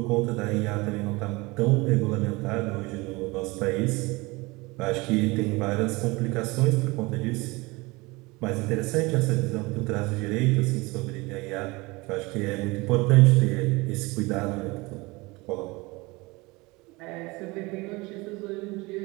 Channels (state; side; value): quieter; left; 23.8 dB